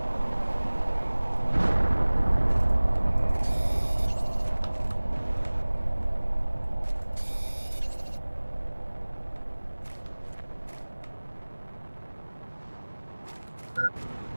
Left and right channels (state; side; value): inverted; both; correlation -1.00